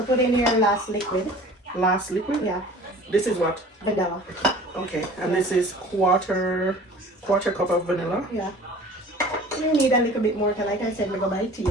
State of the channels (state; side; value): normal; both; correlation 0.45